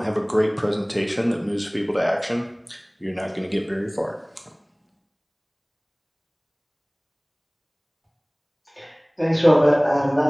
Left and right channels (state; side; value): identical; both; correlation 1.00